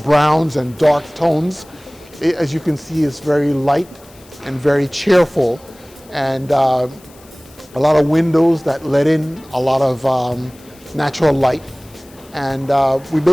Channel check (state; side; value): noise; left; hiss, 26 dB below the sound